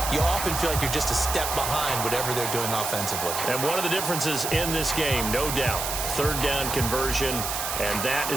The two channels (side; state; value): right; noise; hiss, 3 dB below the sound